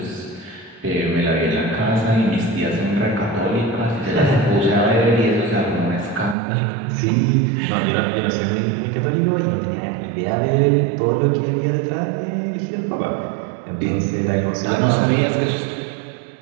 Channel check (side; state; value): left; drops out; at 6.4 s